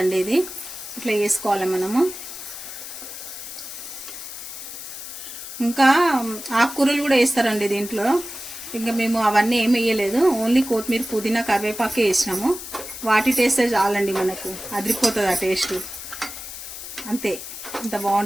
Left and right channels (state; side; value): noise; left; hiss, 10 dB below the sound